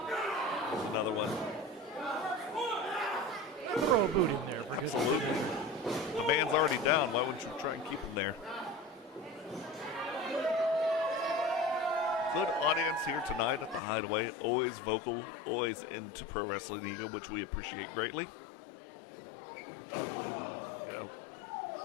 There's another one. Throw a boot in there. For Absolutely. The man's already down. Why wouldn't you try and keep him there? Good audience here tonight at the Hideaway. Always vocal, always into Pro Wrestling Eagle, which we appreciate greatly.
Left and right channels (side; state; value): right; drops out; at 13.8 s